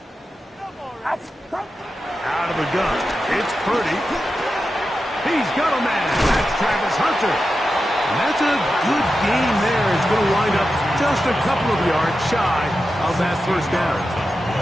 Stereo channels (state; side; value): normal; both; correlation 0.91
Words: Out. Out out of the gun. It's Purdy. He's got a man. That's Travis Hunter. And that's a good game there. It's going to wind up just a couple of yards shy of that first down.